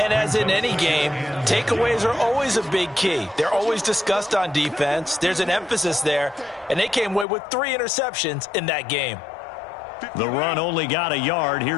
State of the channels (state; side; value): drops out; right; at 7.2 s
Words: as in any game, takeaways are always a big key. They're always discussed on defense. There's an emphasis there, and they came away with 3 interceptions in that game. The run only got a yard.